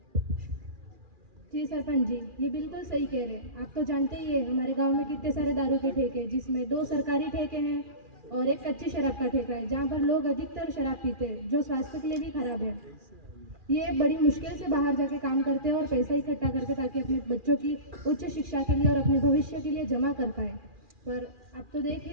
जी सरपंच जी ये बिल्कुल सही कह रहे हैं। आप तो जानते ही है हमारे गांव में कितने सारे दारू के ठेके हैं जिसमें 2 सरकारी ठेके हैं और एक कच्ची शराब का ठेका है जहाँ पर लोग अधिकतर शराब पीते हैं जो स्वास्थ्य के लिए भी खराब है। ये बड़ी मुश्किल से बाहर जाके काम करते हैं और पैसा इकट्ठा करके ताकि अपने बच्चों की उच्च शिक्षा के लिए और अपने भविष्य के लिए जमा कर पाए। पर आप तो देख ही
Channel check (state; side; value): late; left; 2.4 ms